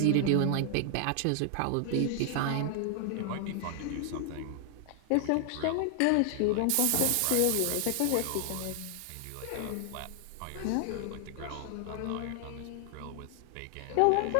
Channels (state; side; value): different; both; correlation 0.00